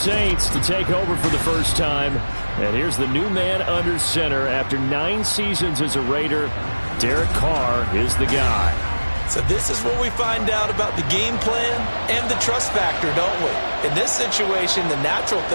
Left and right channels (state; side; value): inverted; both; correlation -1.00